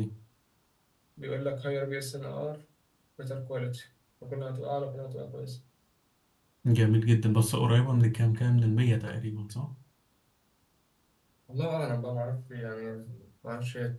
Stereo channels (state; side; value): identical; both; correlation 1.00